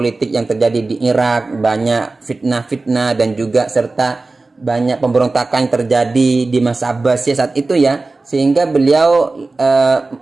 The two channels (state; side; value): quieter; left; 3.4 dB